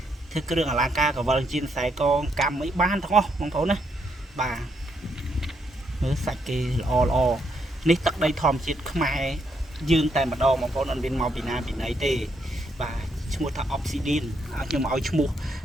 ធ្វើគ្រឿងអលង្ការកវលជៀនខ្សែកងកម្មអីបានទាំងអស់បងប្អូនណាបាទមើលសាច់គេល្អនេះទឹកដីធម្មជាតិខ្មែរយើងតែម្ដងបងប្អូនអត់មានមកពីណាពីណីទេបាទឈ្មោះថា Obsidian ខ្ញុំឲ្យឈ្មោះ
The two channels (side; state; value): both; normal; correlation 0.76